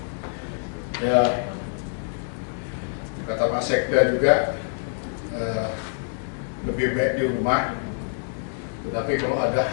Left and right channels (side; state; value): right; silent; 61 dB below the other